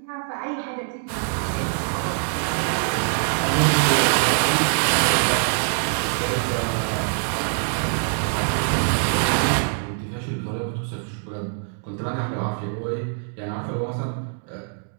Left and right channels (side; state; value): left; silent; 63 dB below the other